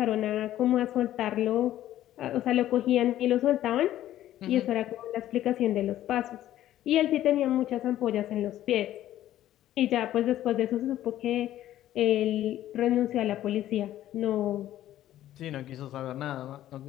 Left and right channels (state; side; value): quieter; right; 13.0 dB